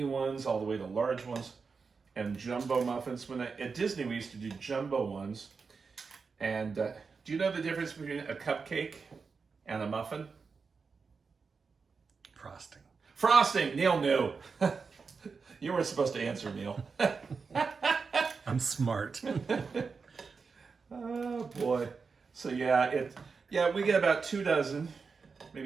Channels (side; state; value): left; quieter; 5.0 dB